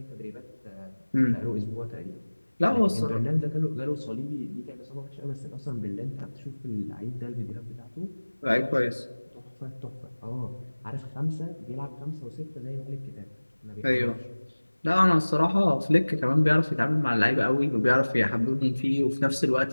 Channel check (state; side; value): inverted; both; correlation -1.00